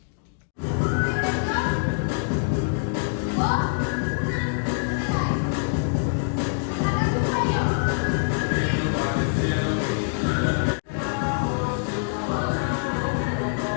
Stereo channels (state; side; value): silent; right; digital silence